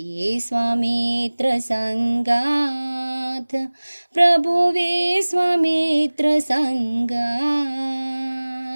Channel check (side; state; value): both; inverted; correlation -1.00